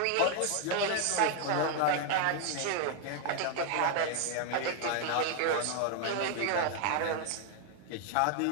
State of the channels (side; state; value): both; different; correlation 0.00